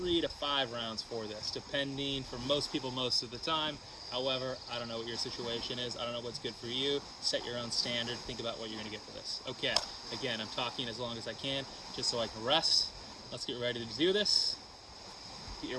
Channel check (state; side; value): identical; both; correlation 1.00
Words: to 5 rounds for this, depending for most people most of the time. However, I don't know what your situation is. I don't know what's good for you. Set your own standard. Think about what you're going to get for this. Okay, again, I'm talking as long as I can, just so I can rest. Let's get ready to do this. Get your